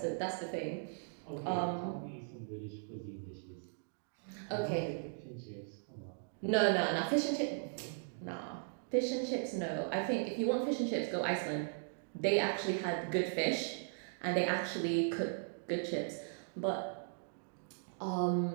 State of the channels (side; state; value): left; silent; digital silence